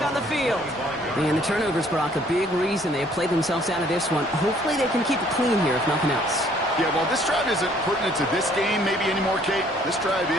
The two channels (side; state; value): both; normal; correlation 0.61